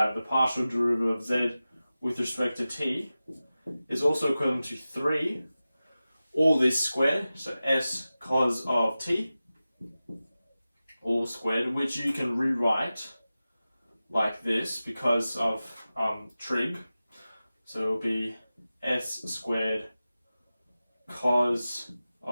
the partial derivative of z with respect to t is also equivalent to 3, all this squared, so s cos of t, all squared, which you can rewrite like this because of trig. So it will be s squared cos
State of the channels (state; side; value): inverted; both; correlation -0.95